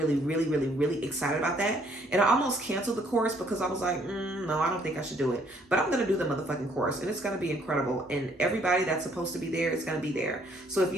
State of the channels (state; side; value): normal; both; correlation 0.65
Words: excited about that. And I almost canceled the course because I was like, no, I don't think I should do it. But I'm going to do the motherfucking course, and it's going to be incredible. And everybody that's supposed to be there is going to be there. So if